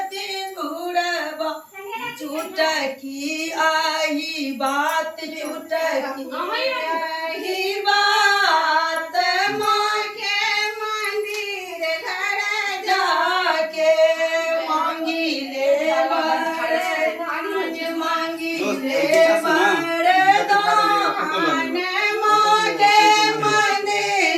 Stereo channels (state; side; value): identical; both; correlation 1.00